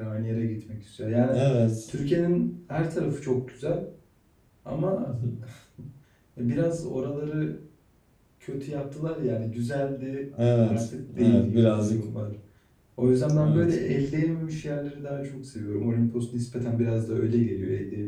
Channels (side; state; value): both; identical; correlation 1.00